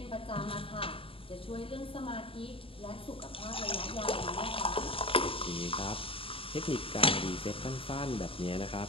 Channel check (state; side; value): late; right; 0.27 ms